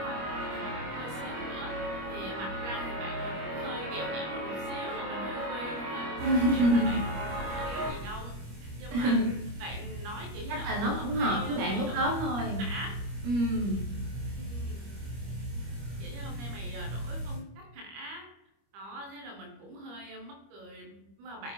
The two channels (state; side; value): late; left; 25 ms